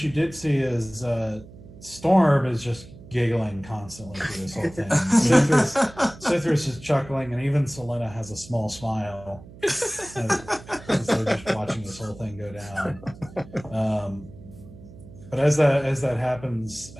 did see is Storm is just giggling constantly through this whole thing. Cithras is chuckling, and even Selena has a small smile as they're just watching this whole thing go down. But as that happens,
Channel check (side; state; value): right; noise; hum, 19 dB below the sound